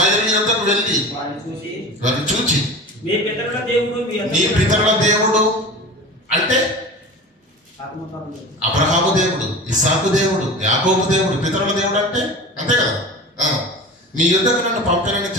యొద్దకు వెళ్ళి వారిని చూచి మీ పితరుల దేవుడు నీ పితరుల దేవుడు అంటే అబ్రహాము దేవుడు, ఇస్సాకు దేవుడు, యాకోబు దేవుడు. పితరుల దేవుడు అంటే అంతే కదా. మీ యుద్ధకు నన్ను పంపానని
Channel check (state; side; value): normal; both; correlation 0.34